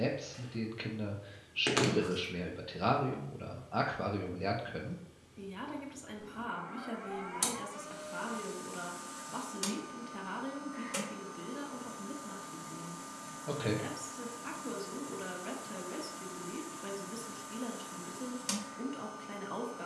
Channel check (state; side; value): identical; both; correlation 1.00